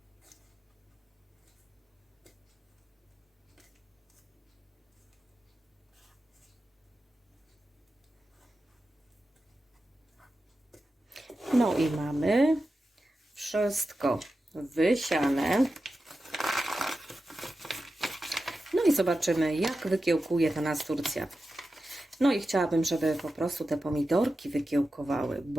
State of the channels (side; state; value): both; normal; correlation 0.92